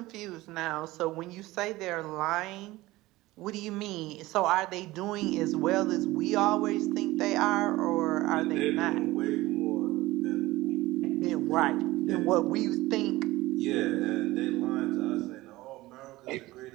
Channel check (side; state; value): left; quieter; 18.6 dB